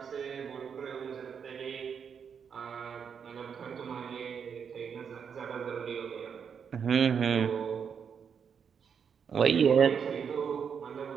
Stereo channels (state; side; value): quieter; left; 7.0 dB